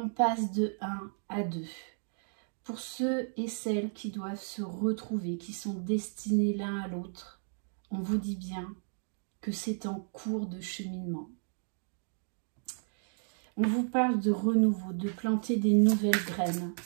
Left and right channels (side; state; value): left; silent; digital silence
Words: passe de 1 à 2. Pour ceux et celles qui doivent se retrouver, qui sont destinés l'un à l'autre, on vous dit bien que c'est en cours de cheminement. On vous parle de renouveau, de planter des nouvelles graines,